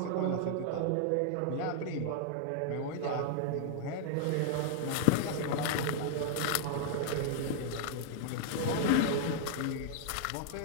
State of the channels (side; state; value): both; different; correlation 0.00